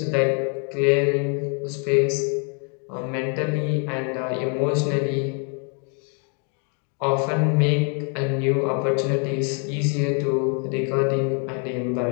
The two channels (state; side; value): quieter; right; 39.5 dB